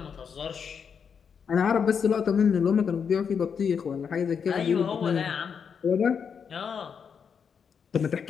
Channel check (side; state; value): right; quieter; 6.7 dB